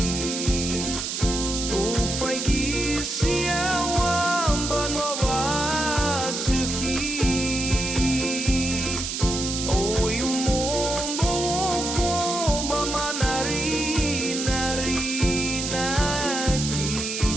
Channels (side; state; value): right; noise; hiss, 3 dB below the sound